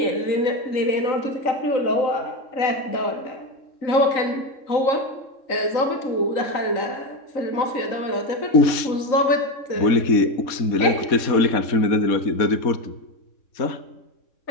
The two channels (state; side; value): late; right; 3.6 ms